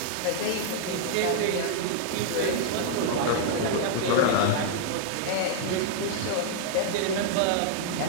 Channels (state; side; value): different; both; correlation -0.01